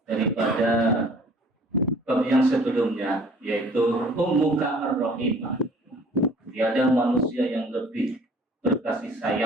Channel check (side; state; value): both; normal; correlation 0.52